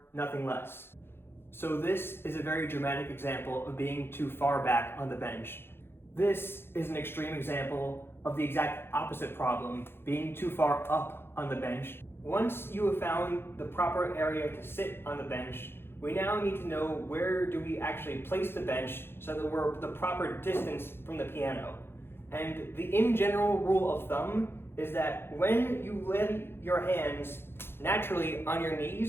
nothing less. So this is a very dramatic example of being too far back on the bench. This is an extreme example of the exact opposite problem, being too far up on the bench. Once you have found the proper area to sit on the bench, we now need to know where do we actually place the bench so that we're the proper distance from the piano. And the in general rule of thumb is that when you lay your hands naturally on your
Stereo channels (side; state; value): right; late; 0.11 ms